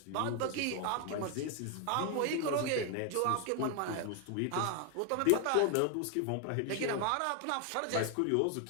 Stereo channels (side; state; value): both; different; correlation 0.00